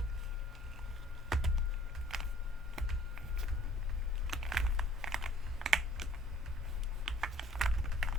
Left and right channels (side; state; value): both; normal; correlation 0.56